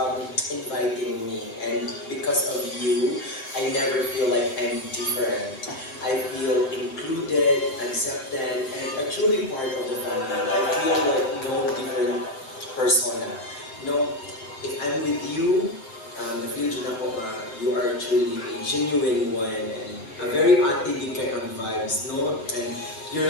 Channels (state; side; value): late; right; 7.7 ms